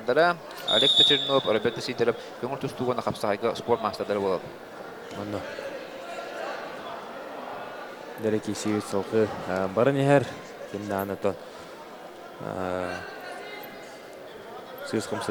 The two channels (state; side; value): identical; both; correlation 1.00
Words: Олег Чернов, Роберт Сидоров көңүл тустуугуна капсайга спорт мастардары болот. Онно дереки сүйүт солкы барын эхер кимданы то сыз